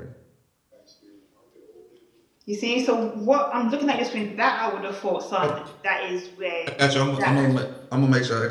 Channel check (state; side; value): identical; both; correlation 1.00